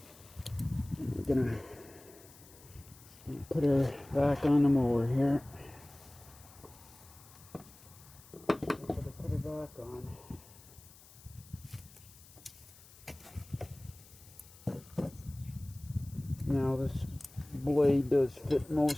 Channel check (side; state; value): left; noise; hiss, 22 dB below the sound